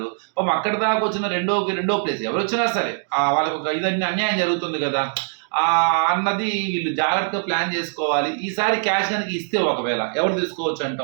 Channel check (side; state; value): left; silent; digital silence